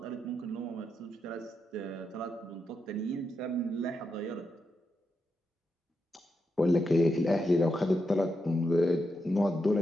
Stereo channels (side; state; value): both; normal; correlation 0.85